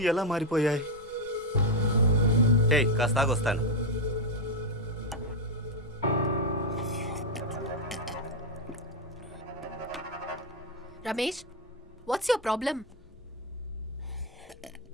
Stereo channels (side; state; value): both; normal; correlation 0.04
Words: ఎలా మారిపోయాయి? హే కాస్త ఆగొస్తాను. Ramesh, what's your problem?